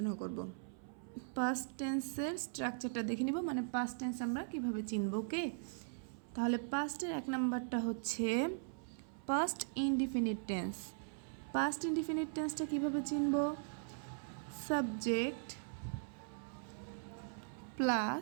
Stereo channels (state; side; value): silent; left; 51 dB below the other